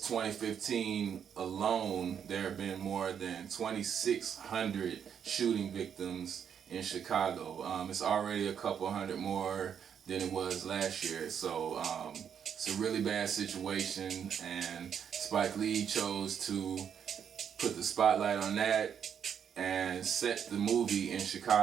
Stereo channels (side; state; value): left; quieter; 8.0 dB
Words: 2015 alone, there have been more than 2,600 shooting victims in Chicago. It's already a couple hundred more than it was last year. So it's a really bad situation, and Spike Lee chose to put the spotlight on that and set the movie in